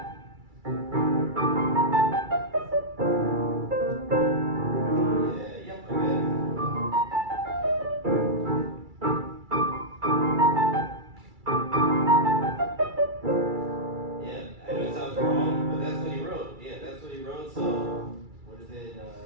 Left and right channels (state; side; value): late; left; 2.3 ms